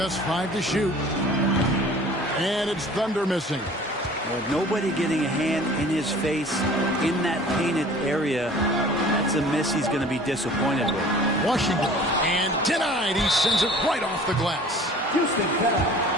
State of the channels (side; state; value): both; normal; correlation 0.47